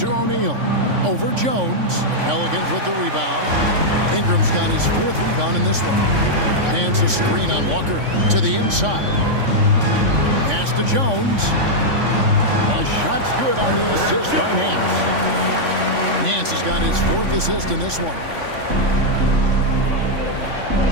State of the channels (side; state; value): left; late; 3.5 ms